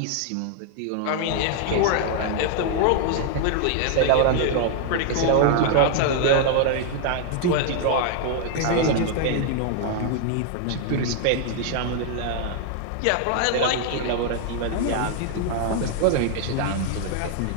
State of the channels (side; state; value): both; different; correlation 0.00